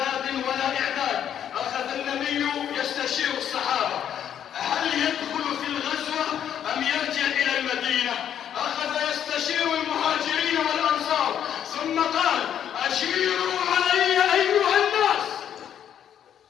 ولا إعداد. أخذ النبي يستشير الصحابة هل يدخل في الغزوة أم يرجع إلى المدينة. أخذ يستشير المهاجرين والأنصار ثم قال: أشيروا علي أيها الناس.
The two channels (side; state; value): right; quieter; 9.6 dB